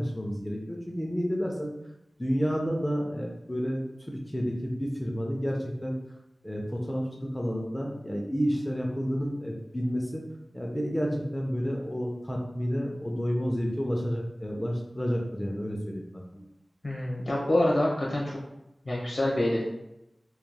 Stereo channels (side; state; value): both; normal; correlation 0.98